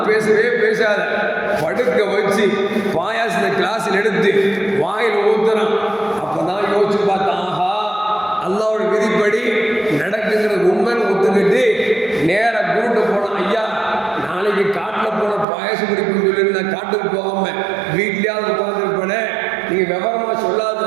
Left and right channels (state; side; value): drops out; left; at 15.5 s